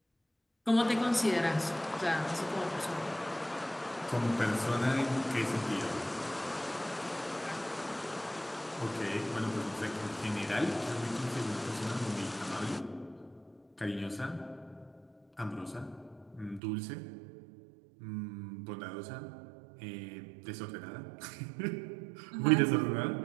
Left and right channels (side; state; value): left; drops out; at 16.6 s